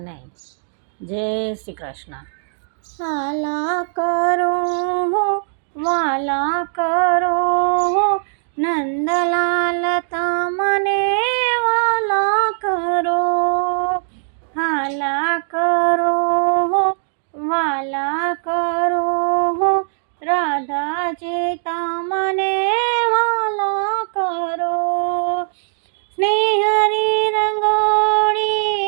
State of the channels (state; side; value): silent; left; digital silence